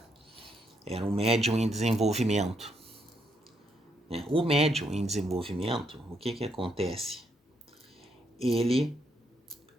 era um médium em desenvolvimento, né? O médium em desenvolvimento, o que acontece? Ele,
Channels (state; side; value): normal; both; correlation 0.76